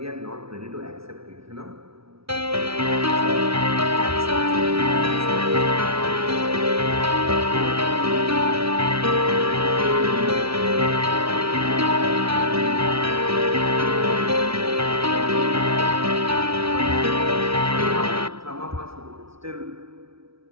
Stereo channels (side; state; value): left; late; 0.76 ms